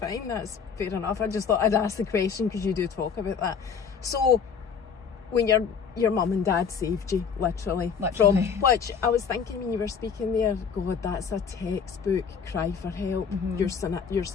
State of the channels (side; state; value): right; quieter; 6.5 dB